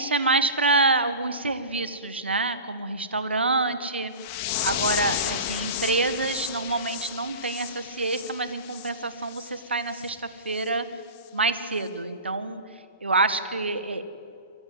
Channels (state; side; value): inverted; both; correlation -0.33